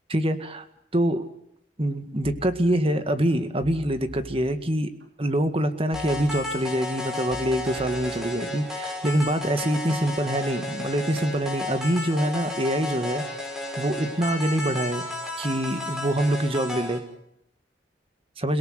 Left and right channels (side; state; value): both; normal; correlation 0.72